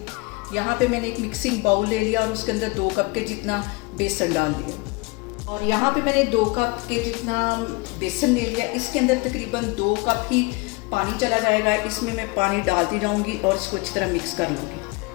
यहाँ पे मैंने एक मिक्सिंग बाउल ले लिया और उसके अंदर 2 कप के जितना बेसन डाल दिया। और यहाँ पे मैंने 2 कप के जितना बेसन ले लिया। इसके अंदर तकरीबन 2 कप ही पानी चला जाएगा। इसमें मैं पानी डालती जाऊंगी और इसको अच्छी तरह मिक्स कर लूँगी।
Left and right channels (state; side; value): quieter; right; 26.6 dB